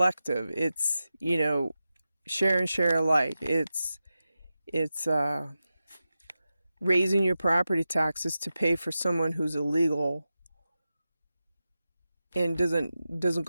It's, share and share alike. It's raising your property taxes to pay for someone who's illegal and doesn't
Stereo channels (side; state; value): both; inverted; correlation -0.92